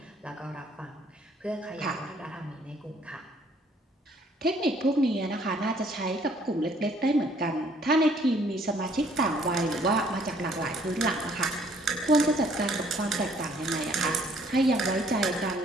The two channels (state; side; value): normal; both; correlation 0.62